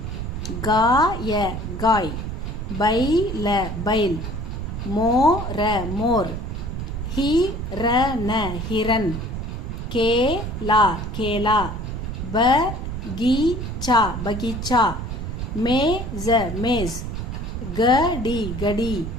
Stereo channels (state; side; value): noise; right; rumble, 5 dB below the sound